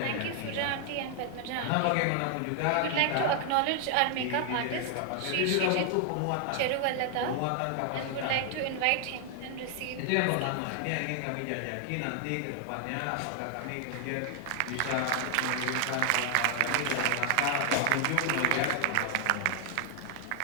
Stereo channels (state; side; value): different; both; correlation 0.00